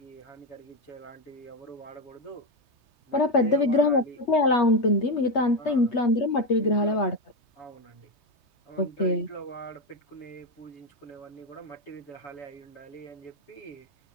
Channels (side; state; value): right; late; 3.2 ms